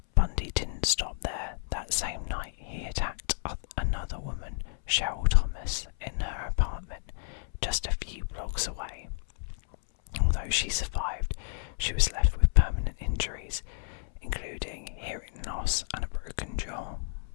Bundy didn't stop there. That same night he attacked another woman, Cheryl Thomas, in her apartment just a few blocks away. Although she survived, she was left with permanent injuries, including hearing loss and a broken jaw.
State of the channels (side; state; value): right; silent; 57 dB below the other